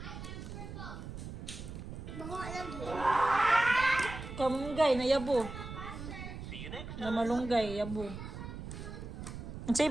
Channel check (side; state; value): right; noise; rumble, 9 dB below the sound